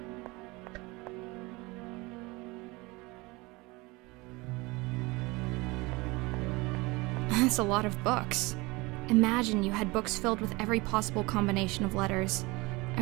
That's a lot of books. Imagine you had books filled with every possible combination of letters.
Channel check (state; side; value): quieter; left; 23.8 dB